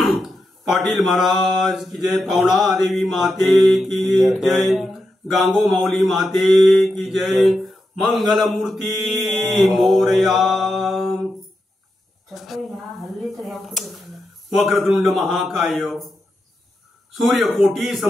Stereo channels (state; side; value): normal; both; correlation 0.87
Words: पाटील महाराज की जय, पावना देवी माते की जय, गांगो माऊली माते की जय, मंगल मूर्ती मोरया। वक्रतुंड महाकाय सूर्यकोटी